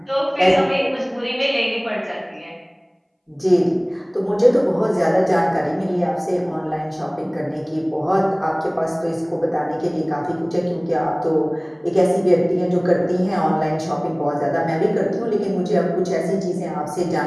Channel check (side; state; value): both; identical; correlation 1.00